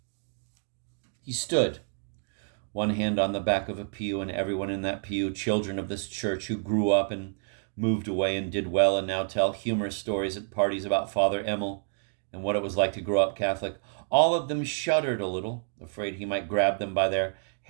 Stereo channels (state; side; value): silent; left; digital silence